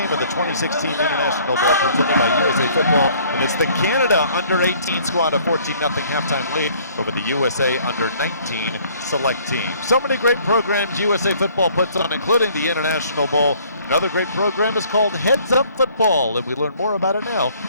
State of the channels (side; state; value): both; inverted; correlation -0.58